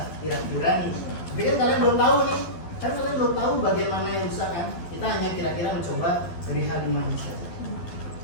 Kira-kira nih. Tapi kan kalian belum tahu nih, kan kalian belum tahu bagian mana yang rusak kan? Kita hanya kira-kira mencoba dari hal 5 ini saja.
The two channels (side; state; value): right; late; 12 ms